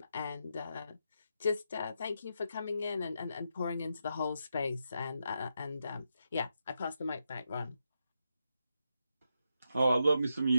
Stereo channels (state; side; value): inverted; both; correlation -0.84